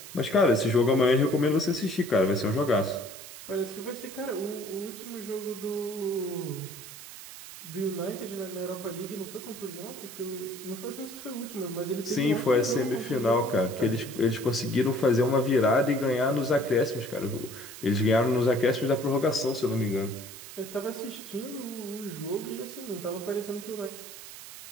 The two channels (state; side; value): noise; right; hiss, 14 dB below the sound